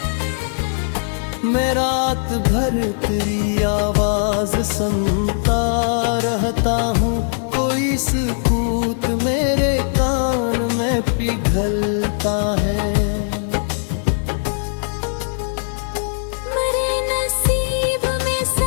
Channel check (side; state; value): right; silent; 58 dB below the other